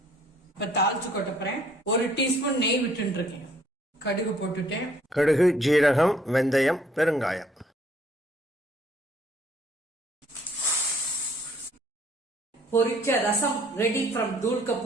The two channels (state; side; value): normal; both; correlation 0.62